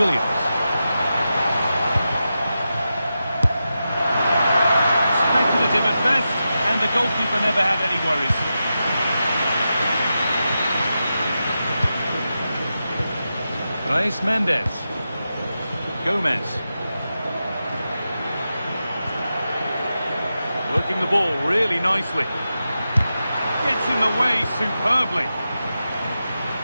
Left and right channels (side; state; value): both; inverted; correlation -0.90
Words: Speculative at best, and the goalkeeper never had any worries. Reis Mendes. Gomez. Working the ball really nicely. Gets in the way superbly.